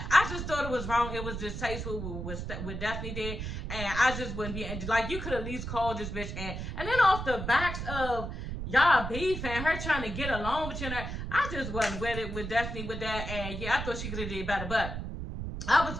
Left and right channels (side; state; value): right; noise; rumble, 5 dB below the sound